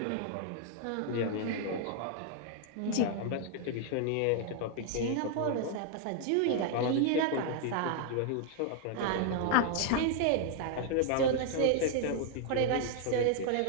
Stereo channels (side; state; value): both; different; correlation 0.00